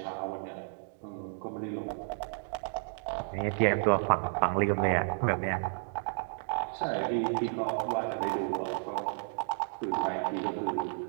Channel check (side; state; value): left; silent; digital silence